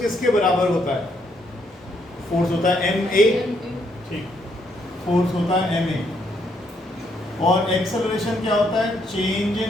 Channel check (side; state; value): both; normal; correlation 0.73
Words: किसके बराबर होता है? फोर्स होता है ma. ठीक, फोर्स होता है ma. और एक्सेलरेशन क्या होता है? Change in